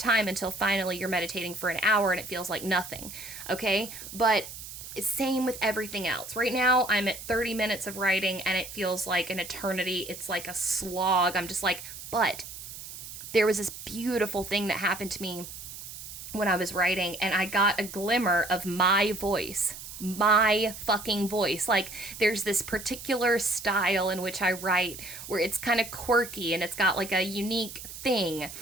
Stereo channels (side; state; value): right; noise; hiss, 12 dB below the sound